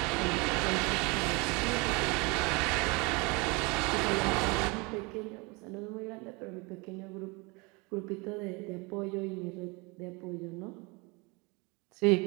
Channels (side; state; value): left; quieter; 27.6 dB